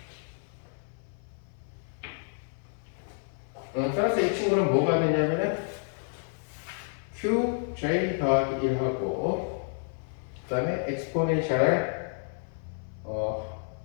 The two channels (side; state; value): right; silent; 58 dB below the other